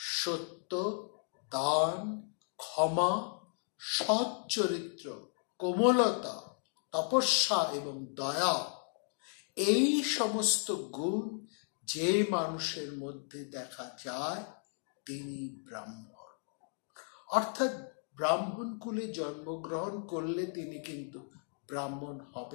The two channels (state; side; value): silent; right; 54 dB below the other